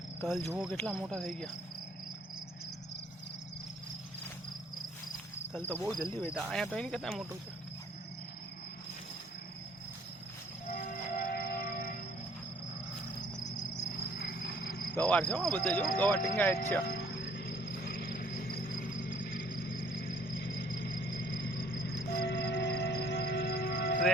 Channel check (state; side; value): normal; both; correlation 0.60